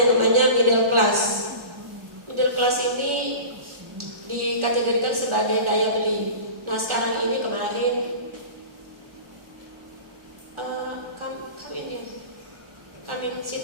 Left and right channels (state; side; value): late; left; 1.4 ms